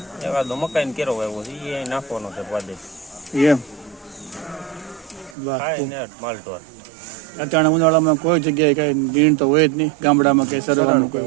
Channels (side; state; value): left; drops out; at 5.4 s